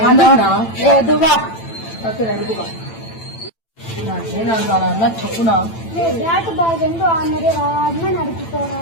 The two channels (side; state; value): right; late; 8.9 ms